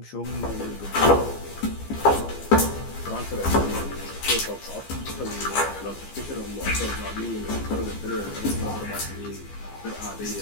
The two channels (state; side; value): late; right; 15 ms